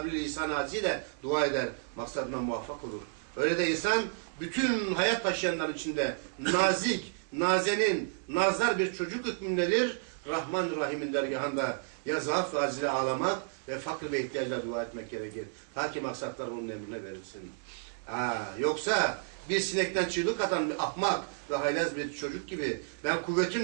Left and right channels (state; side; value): silent; left; digital silence